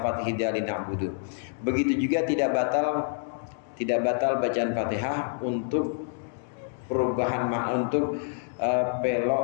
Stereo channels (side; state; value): right; silent; digital silence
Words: hidali na'budu. Begitu juga tidak batal bacaan Fatihah untuk perubahan makna, untuk